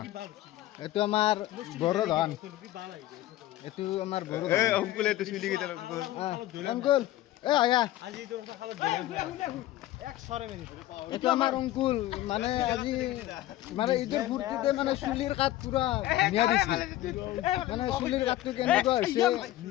এইটো আমাৰ বড়ো ধান এইটো আমাৰ বড়ো ধান অংকুলে তো চুলি কেইটা অংকুল আয়া আজি তোৰ খালত এক সৰে এইটো আমাৰ অংকুল মানে আজি মানে ঈদৰ ফূৰ্তিতে মানে চুলিৰ কাট পুৰা ধুনীয়া দিছে মানে চুলিৰ কাটটো কেনেকুৱা হৈছে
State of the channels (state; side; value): quieter; right; 14.9 dB